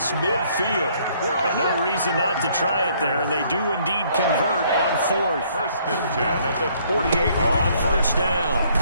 midfield. And no reason not to try it there, and they do indeed convert on 4th. 1st and 10 at the 48. On 1st down,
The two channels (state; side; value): inverted; both; correlation -0.64